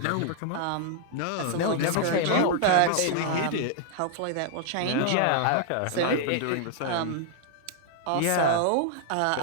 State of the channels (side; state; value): both; different; correlation 0.00